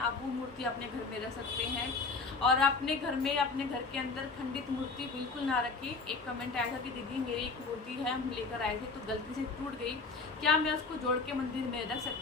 वो मूर्ति अपने घर में रख सकते हैं। और अपने घर में, अपने घर के अंदर खंडित मूर्ति बिल्कुल ना रखें। एक कमेंट आया था कि दीदी मेरी एक मूर्ति है, हम लेकर आए थे तो गलती से टूट गई, क्या मैं उसको जोड़ के मंदिर में रख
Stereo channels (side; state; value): right; quieter; 4.1 dB